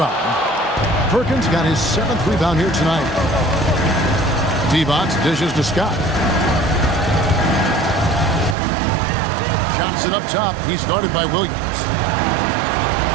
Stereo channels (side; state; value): left; drops out; at 8.6 s